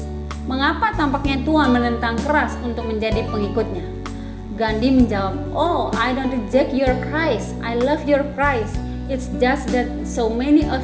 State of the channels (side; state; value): both; identical; correlation 1.00